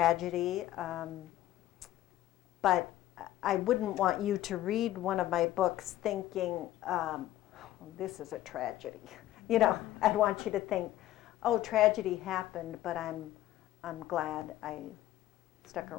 But I wouldn't want you to read one of my books thinking, this is a tragedy. I'd want you to think, oh, tragedy happened, but I'm glad I stuck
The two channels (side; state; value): right; quieter; 14.3 dB